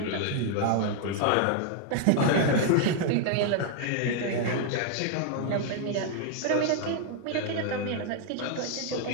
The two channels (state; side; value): different; both; correlation 0.00